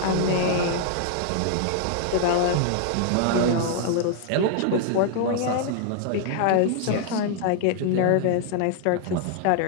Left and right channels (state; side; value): different; both; correlation -0.01